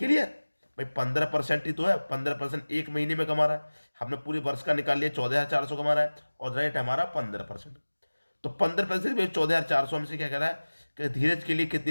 भाई? 15% ही तो है, 15% एक महीने में कमा रहा है। हमने पूरे वर्ष का निकाल लिया, 14,400 कमा रहा है और रेट हमारा 15%। तो 15% में 14,400 हमसे क्या कह रहा है कि धीरज के लिए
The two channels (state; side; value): inverted; both; correlation -1.00